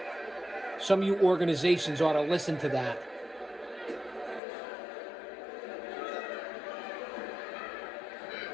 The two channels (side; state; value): right; drops out; at 4.4 s